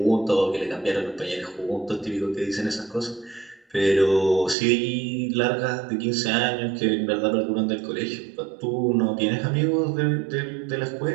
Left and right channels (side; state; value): left; drops out; at 4.5 s